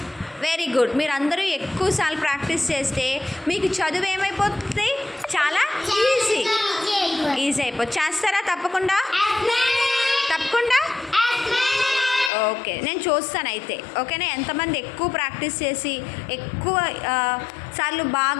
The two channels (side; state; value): right; drops out; at 12.3 s